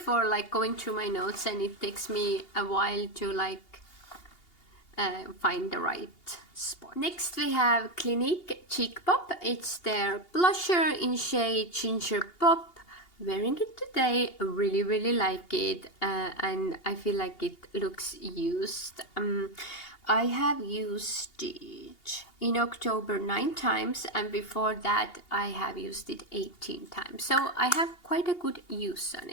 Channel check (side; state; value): right; late; 2.8 ms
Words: like going through my notes, and it takes me a while to like find the right spot. Next we have Clinique Cheek Pop. It's their blusher in shade Ginger Pop. Wearing it today, really like it, and I feel like it looks used. I have used it in October 9 times, and before that I have used it 18 times. So I have quite a good use on